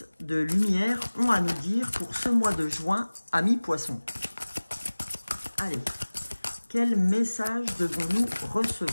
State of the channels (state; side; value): inverted; both; correlation -1.00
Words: de lumière ont à nous dire pour ce mois de juin, amis poissons. Allez, quel message devons-nous